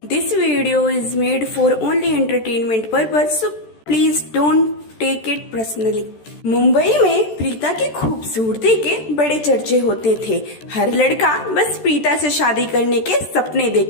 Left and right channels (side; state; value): right; late; 13 ms